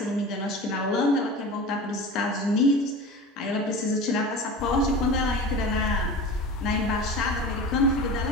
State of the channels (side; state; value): both; normal; correlation 0.33